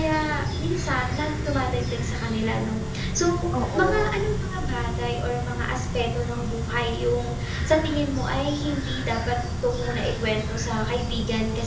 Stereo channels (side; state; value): both; identical; correlation 1.00